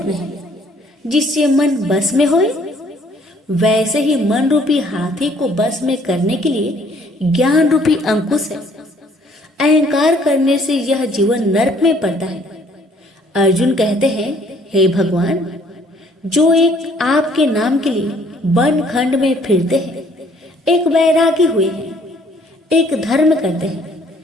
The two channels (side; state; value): both; normal; correlation 0.61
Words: है जिससे मन बस में होए? वैसे ही मन रूपी हाथी को बस में करने के लिए ज्ञान रूपी अंकुश है। अहंकार करने से यह जीवन नरक में पड़ता है। अर्जुन कहते हैं, हे भगवान, जो एक आपके नाम के लिए वन खंड में फिरते हैं, एक वैरागी हुए हैं, एक धर्म करते हैं,